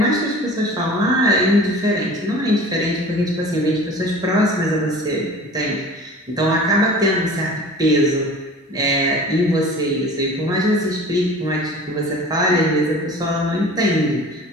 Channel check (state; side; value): normal; both; correlation 0.42